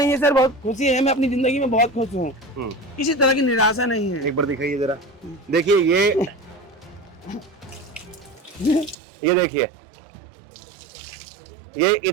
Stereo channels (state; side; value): drops out; left; at 9.0 s